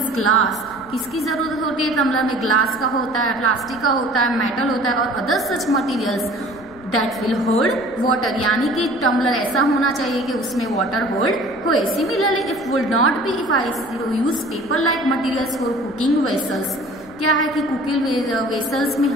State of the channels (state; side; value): noise; left; rumble, 23 dB below the sound